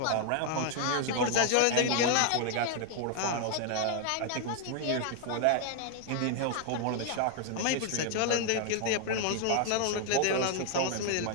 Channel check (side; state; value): both; different; correlation 0.00